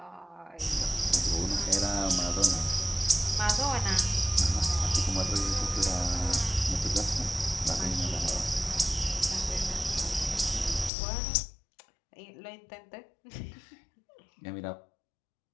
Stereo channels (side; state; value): right; drops out; at 10.9 s